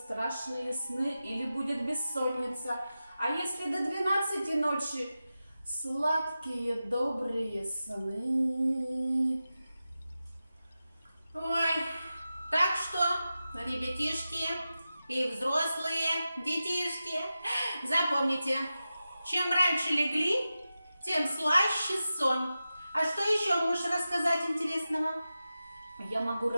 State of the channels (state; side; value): inverted; both; correlation -0.93